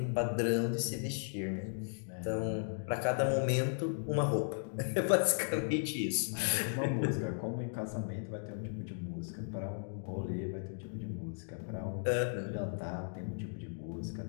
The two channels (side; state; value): right; silent; digital silence